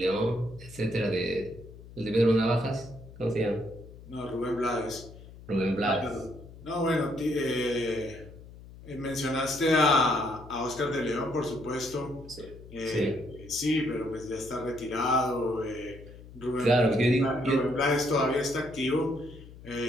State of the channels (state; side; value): noise; left; hum, 18 dB below the sound